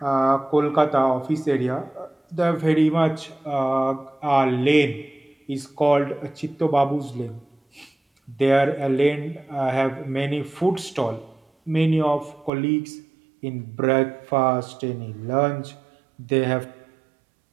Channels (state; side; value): drops out; left; at 12.5 s